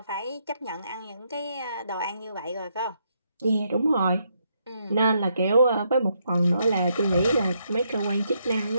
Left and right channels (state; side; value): inverted; both; correlation -0.76